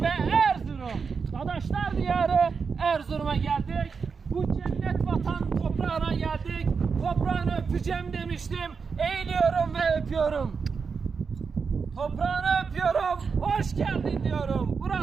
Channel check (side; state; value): left; quieter; 5.4 dB